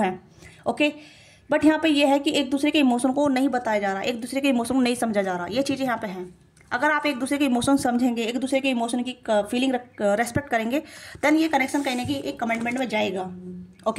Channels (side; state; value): both; identical; correlation 1.00